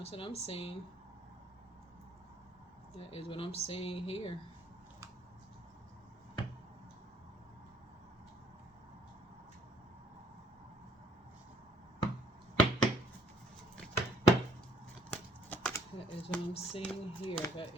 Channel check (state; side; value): normal; both; correlation 0.62